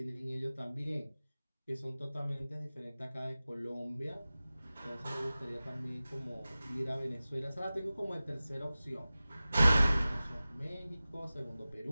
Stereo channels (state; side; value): inverted; both; correlation -0.97